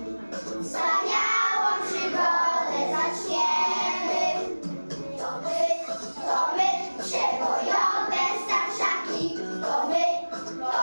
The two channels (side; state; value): both; inverted; correlation -1.00